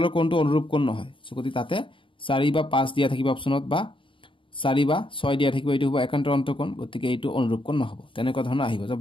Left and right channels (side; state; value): right; late; 0.25 ms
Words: কোণটো অনুৰূপ কোণ নহয় সো গতি তাতে 4 বা 5 দিয়া থাকিব অপচনত বা 4 বা 6 দিয়া থাকিব এইটো হ'ব একান্তৰ অন্তকোণ গতিকে এইটো অনুৰূপ কোণ নহব তেনেকুৱা ধৰণৰ আহিব